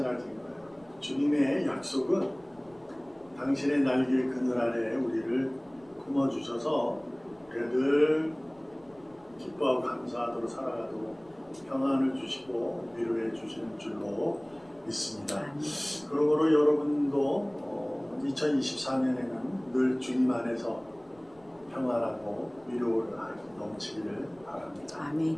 거예요. 주님의 약속은 당신의 날개 그늘 아래에 우리를 품어주셔서 늘 기뻐하고 감사하도록 살아가도록 평안을 주시고 위로해 주시는 줄로 믿습니다. 그러므로 여러분도 2024년에는 늘 주님 안에서 평안하고 위로를 넘치기를 바랍니다. 아멘.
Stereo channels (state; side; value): noise; left; rumble, 29 dB below the sound